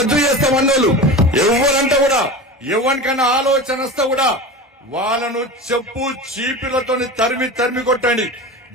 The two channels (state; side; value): normal; both; correlation 0.29